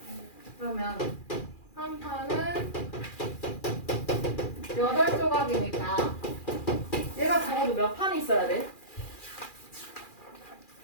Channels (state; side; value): late; right; 2.4 ms